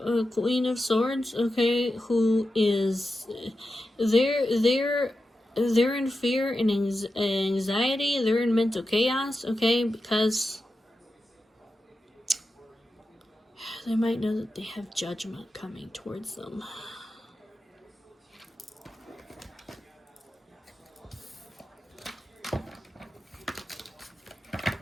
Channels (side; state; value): both; normal; correlation 0.91